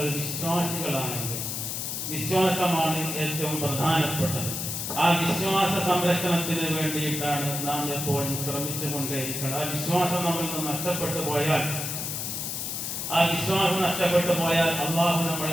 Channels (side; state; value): left; noise; hiss, 4 dB below the sound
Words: വിശ്വാസികളാണെങ്കിൽ. വിശ്വാസമാണ് ഏറ്റവും പ്രധാനപ്പെട്ടത്. ആ വിശ്വാസ സംരക്ഷണത്തിന് വേണ്ടിയിട്ടാണ് നാം എപ്പോഴും ശ്രമിച്ചുകൊണ്ടേയിരിക്കുന്നത്. ആ വിശ്വാസം നമ്മിൽ നിന്ന് നഷ്ടപ്പെട്ടു പോയാൽ, അള്ളാഹു